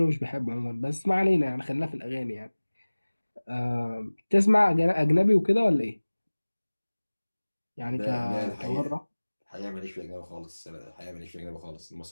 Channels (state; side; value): inverted; both; correlation -1.00